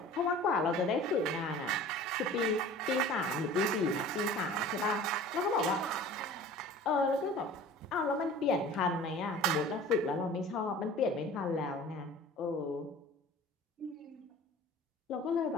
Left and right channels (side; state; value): both; normal; correlation 0.42